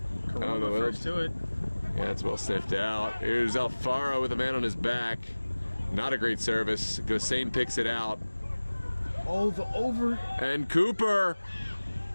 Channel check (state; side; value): inverted; both; correlation -1.00